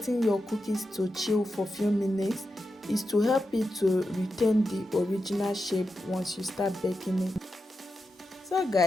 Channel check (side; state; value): both; normal; correlation 0.89